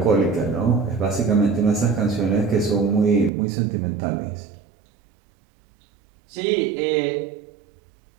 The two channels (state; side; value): drops out; left; at 3.3 s